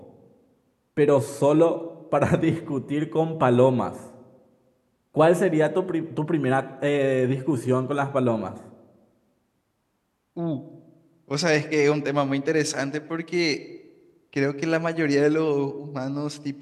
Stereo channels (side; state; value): both; identical; correlation 1.00